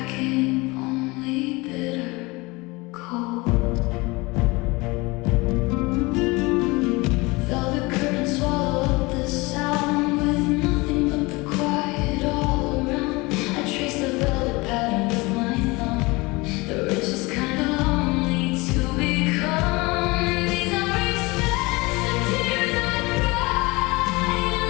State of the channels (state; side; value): quieter; right; 24.0 dB